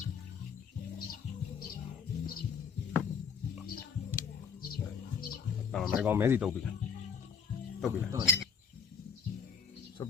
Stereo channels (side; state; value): right; quieter; 6.2 dB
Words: မဲကောင်မဲစီတုပ်ပြီဆွတ်